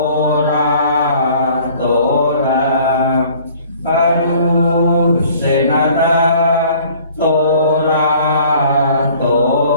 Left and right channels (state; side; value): inverted; both; correlation -0.53